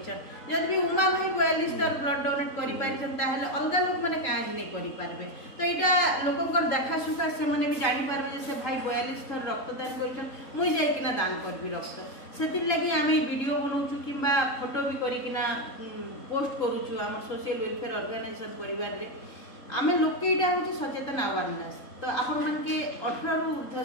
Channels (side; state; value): right; late; 3.8 ms